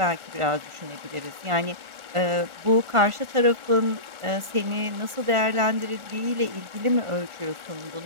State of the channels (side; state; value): left; late; 1.5 ms